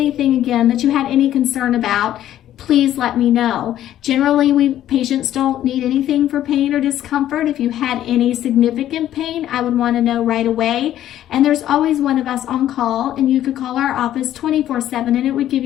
again, that you had any concern about, please let me know. Generally, patients don't need anything for pain or discomfort. If you had any significant pain, I would want to know right away. And there's always one of us on call, and you could call our office 24/7, and it would give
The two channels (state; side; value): quieter; right; 12.2 dB